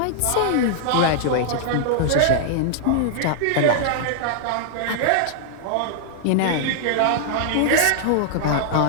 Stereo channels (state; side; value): different; both; correlation -0.01